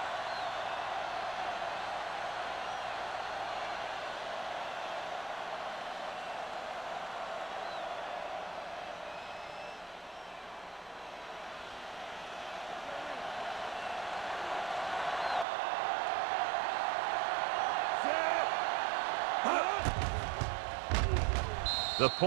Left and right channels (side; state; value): left; drops out; at 15.5 s